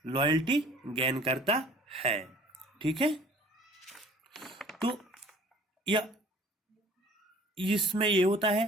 लॉयल्टी गेन करता है। ठीक है, तो या इसमें ये होता है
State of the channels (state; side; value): normal; both; correlation 0.50